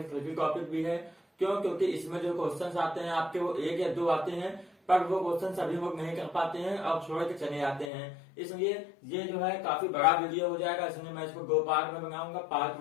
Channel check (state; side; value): drops out; right; at 7.9 s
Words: ट्रिकी टॉपिक भी है। क्यों? क्योंकि इसमें जो क्वेश्चन आते हैं आपके वो 1 या 2 आते हैं, पर वो क्वेश्चन सभी लोग नहीं कर पाते हैं और छोड़ के चले जाते हैं। इसलिए ये जो है काफी बड़ा वीडियो हो जाएगा, इसलिए मैं इसको 2 पार्ट में बनाऊंगा, पार्ट